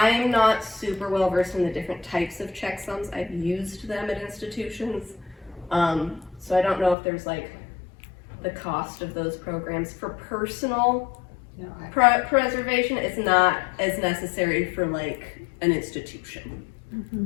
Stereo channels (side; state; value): right; drops out; at 7.0 s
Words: not super well versed in the different types of checksums. I've used them at institutions. So I don't know if there's like the cost of those programs. For personal preservation, it's not as necessary for like an institution.